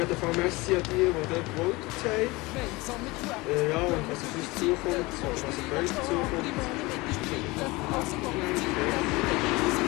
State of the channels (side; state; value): right; quieter; 22.7 dB